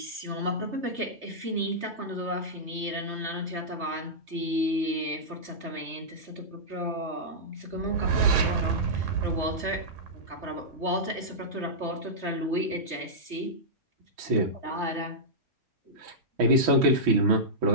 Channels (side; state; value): left; late; 3.2 ms